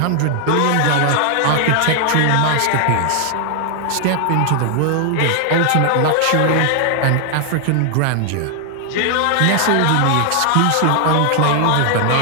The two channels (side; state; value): both; different; correlation 0.00